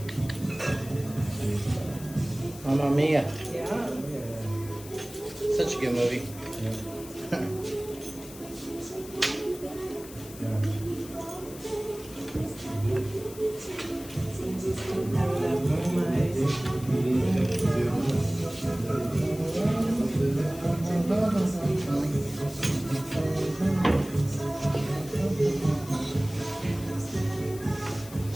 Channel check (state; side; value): noise; left; hiss, 16 dB below the sound